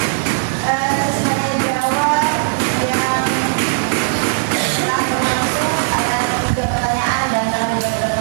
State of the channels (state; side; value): silent; left; digital silence